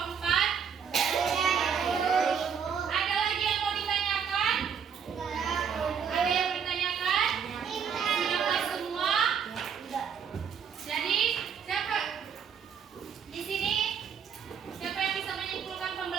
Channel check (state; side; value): quieter; left; 7.2 dB